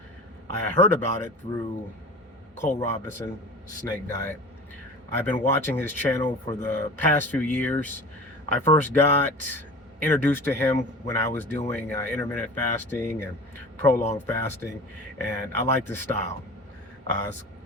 I heard about it through Cole Robinson Snake Diet. I've been watching his channel for the past few years. I first got introduced to him when I was doing intermittent fasting and prolonged fasting, and I like his style. It's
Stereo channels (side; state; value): both; normal; correlation 0.37